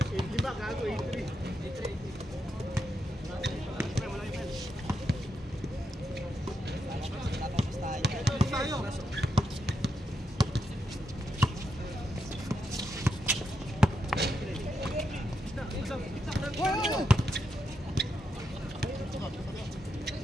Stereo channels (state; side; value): normal; both; correlation 0.83